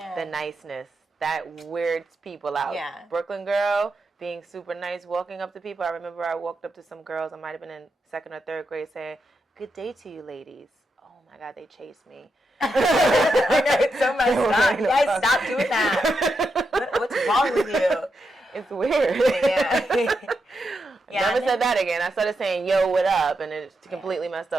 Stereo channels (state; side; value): normal; both; correlation 0.85